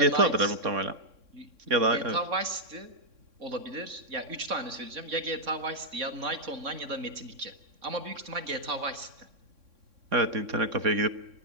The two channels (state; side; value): late; left; 3.6 ms